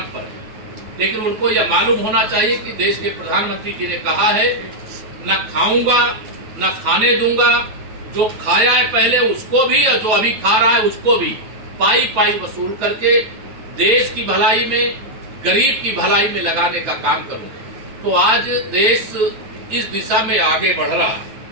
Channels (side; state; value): left; late; 9.2 ms